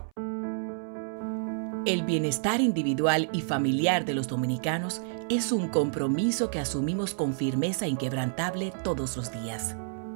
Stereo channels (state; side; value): silent; left; 59 dB below the other